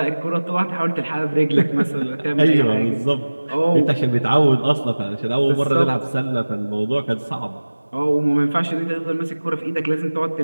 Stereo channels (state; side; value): inverted; both; correlation -1.00